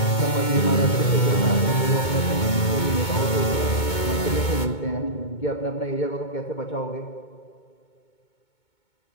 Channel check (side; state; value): right; late; 2.2 ms